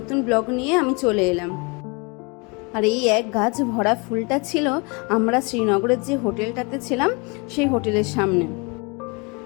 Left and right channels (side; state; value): right; quieter; 30.2 dB